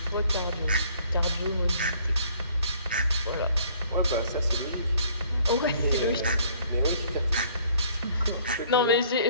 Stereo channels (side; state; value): both; inverted; correlation -0.59